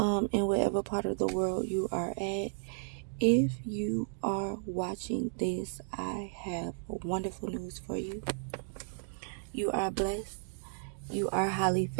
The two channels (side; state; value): left; silent; digital silence